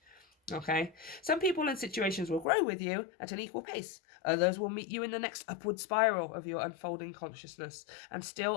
Okay? Some people and situations will grow with you at an equal pace. Others will meet you in the next upward spiral of your unfolding consciousness, and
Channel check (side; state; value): right; drops out; at 2.5 s